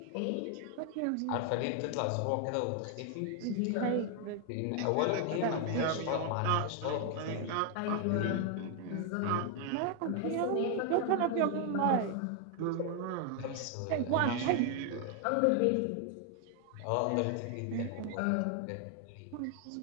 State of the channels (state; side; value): different; both; correlation 0.00